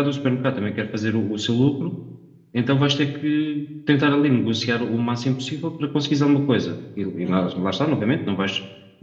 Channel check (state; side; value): identical; both; correlation 1.00